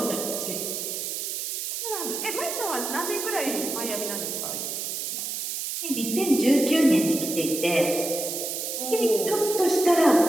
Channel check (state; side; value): noise; right; hiss, 4 dB below the sound